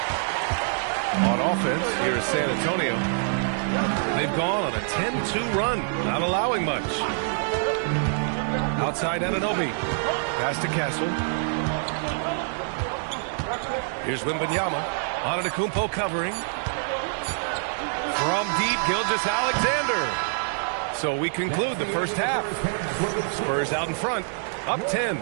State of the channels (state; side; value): silent; left; 61 dB below the other